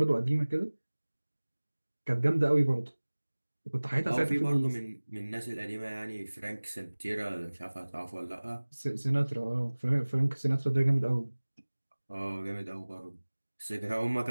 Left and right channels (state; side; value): inverted; both; correlation -1.00